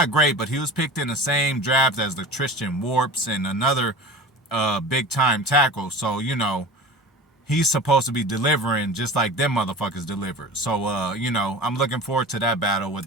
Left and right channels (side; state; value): both; normal; correlation 0.35